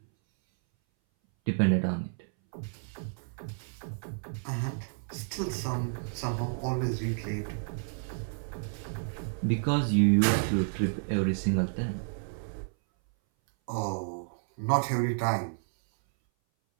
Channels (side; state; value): left; silent; 57 dB below the other